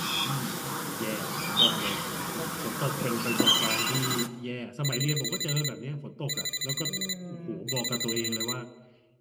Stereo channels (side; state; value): both; identical; correlation 1.00